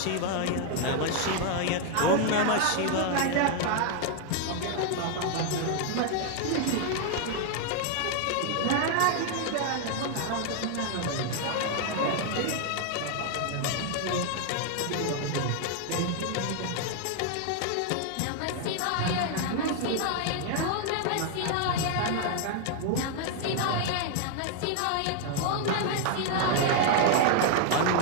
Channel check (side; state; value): both; different; correlation 0.00